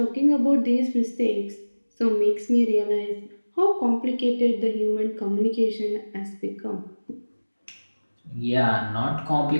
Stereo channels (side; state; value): both; inverted; correlation -1.00